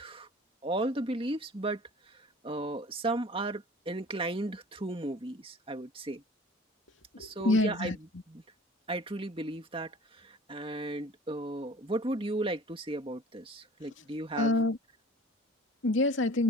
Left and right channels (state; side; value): normal; both; correlation 0.45